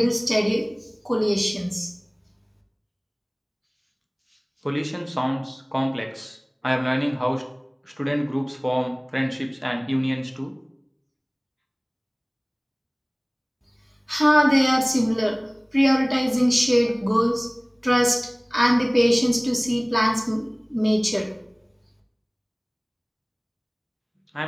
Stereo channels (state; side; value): identical; both; correlation 1.00